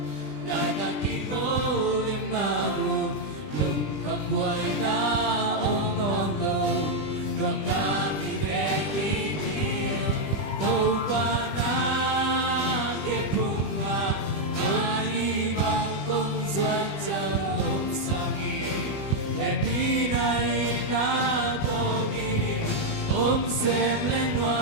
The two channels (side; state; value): right; late; 20 ms